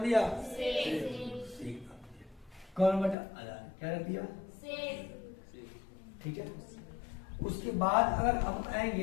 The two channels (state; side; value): drops out; right; at 3.2 s